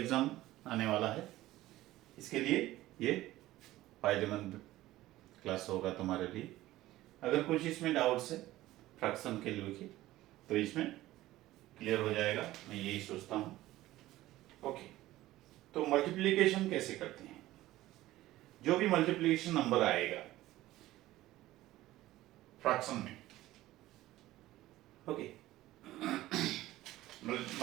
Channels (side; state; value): left; quieter; 16.1 dB